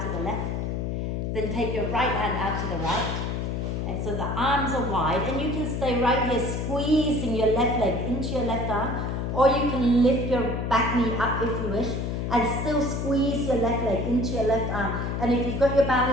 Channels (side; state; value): left; noise; hum, 2 dB below the sound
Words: to the left. Then take your right hand out to the right. And so the arms are wide, and you can stay right here squeezing your left leg into your left arm, or you can lift your back knee up if you wish, and still squeeze your left leg into your left arm. And if you've got your